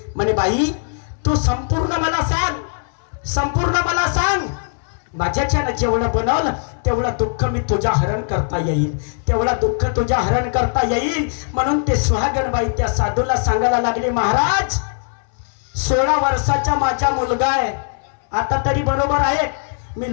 म्हणे बाई तू संपूर्ण मला सांग, संपूर्ण मला सांग. माझ्याच्यानं जेवढं बनवलं तेवढं दुःख मी तुझ्या हरण करता येईल, तेवढं दुःख तुझ्या हरण करता येईल. म्हणून ते सुहागणबाई त्या साधूला सांगायला लागले, महाराज 16 वर्षाचा माझा मुलगा आहे. आता तरी बरोबर आहे, मी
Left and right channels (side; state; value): right; silent; 62 dB below the other